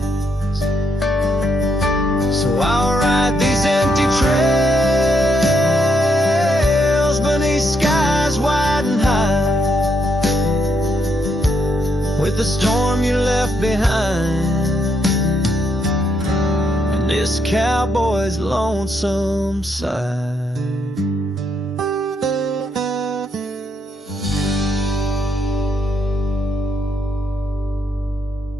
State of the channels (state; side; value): normal; both; correlation 0.77